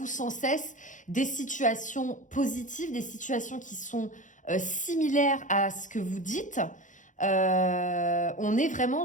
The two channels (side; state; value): right; late; 0.37 ms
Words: sans cesse des situations positives, des situations qui sont similaires à ce que vous dites. On est vraiment